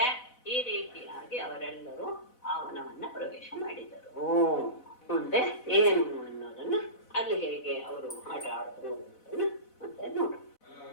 ಈ ರೀತಿಯಾಗಿ ಅವರೆಲ್ಲರೂ ಆ ವನವನ್ನ ಪ್ರವೇಶ ಮಾಡಿದರು. ಮುಂದೆ ಏನು ಅನ್ನೋದನ್ನ ಅಲ್ಲಿ ಹೇಗೆ ಅವರು ಆಟ ಆಡಿದ್ರು ಅನ್ನೋದನ್ನ ಮತ್ತೆ ನೋಡು.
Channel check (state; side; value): late; right; 4.0 ms